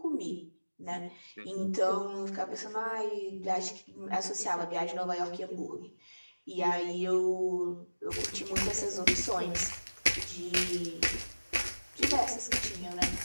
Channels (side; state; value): both; inverted; correlation -1.00